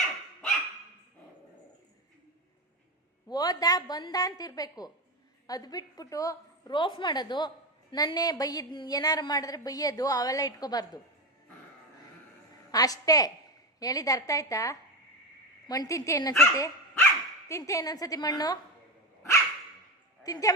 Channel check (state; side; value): normal; both; correlation 0.17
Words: ಓದ ಬಂದ ಅಂತಿರ್ಬೇಕು. ಅದು ಬಿಟ್ಬಿಟ್ಟು ರೋಫ್ ಮಾಡೋದು, ನನ್ನೇ ಬೈಯ್ಯದ್ ಏನಾರು ಮಾಡಿದ್ರೆ ಬೈಯೋದು ಅವೆಲ್ಲ ಇಟ್ಕೋಬಾರ್ದು ಅಷ್ಟೇ. ಹೇಳಿದ ಅರ್ಥ ಆಯ್ತಾ? ಮಣ್ಣು ತಿಂತೆ ಇನ್ನೊಂದ್ಸತಿ? ತಿಂತೆ ಇನ್ನೊಂದ್ಸತಿ ಮಣ್ಣು? ತಿಂತೆ